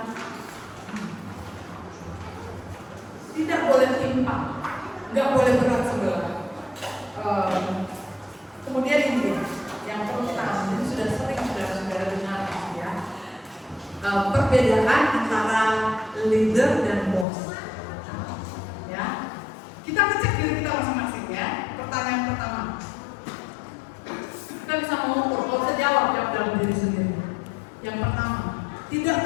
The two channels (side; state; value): right; drops out; at 17.2 s